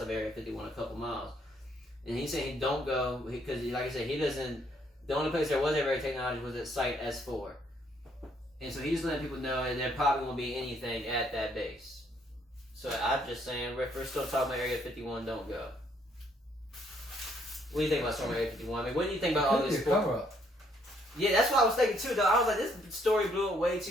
Area 51, a couple miles. And he's saying he don't go, because like I said, he doesn't, the only place there was ever technology was at Site S4. And so he's letting people know that there probably won't be anything at that base. So I'm just saying, if we're still talking about Area 51, don't go. What do you think about Storm Area 51? I mean, what do you think about all this? Cover-up. Yeah, that's what I was thinking too, though. I was like, this story blew it way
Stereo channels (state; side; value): normal; both; correlation 0.69